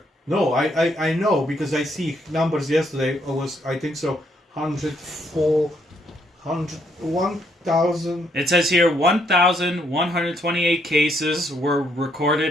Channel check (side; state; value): both; normal; correlation 0.72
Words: No, I know because I see numbers yesterday. It was, I think so, 1,000. It says here 1,128 cases were